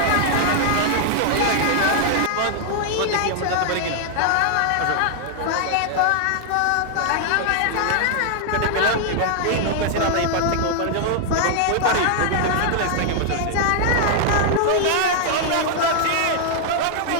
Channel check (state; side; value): different; both; correlation 0.00